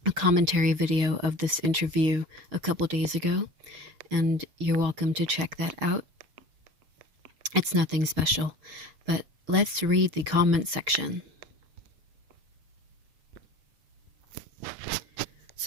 a commentary video of this interview a couple days ago, and you're welcome to check that out. It's nothing special, but let's read the comment section.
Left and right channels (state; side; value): late; left; 6.5 ms